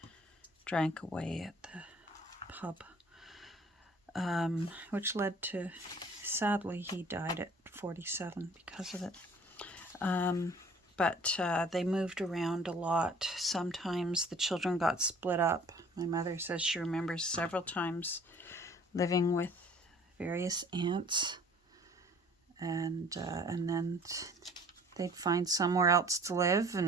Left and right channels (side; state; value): both; normal; correlation 0.52